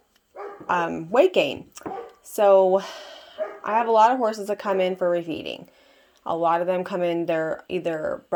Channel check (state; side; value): identical; both; correlation 1.00